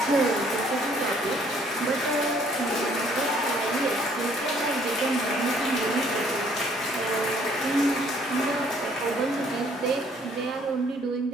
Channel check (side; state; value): both; normal; correlation 0.62